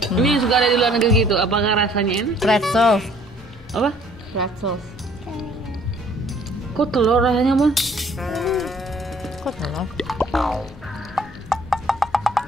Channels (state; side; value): normal; both; correlation 0.58